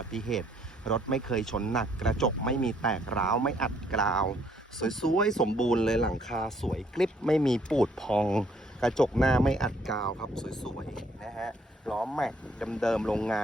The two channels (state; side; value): normal; both; correlation 0.66